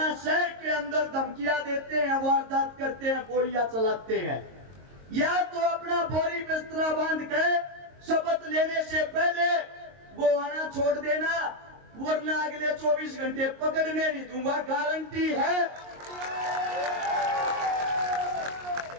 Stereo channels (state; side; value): late; left; 22 ms